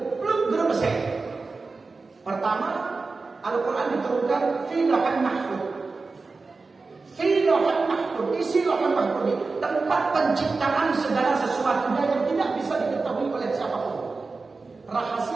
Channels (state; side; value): quieter; left; 4.0 dB